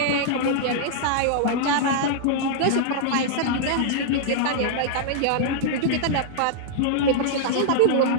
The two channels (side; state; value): both; different; correlation -0.01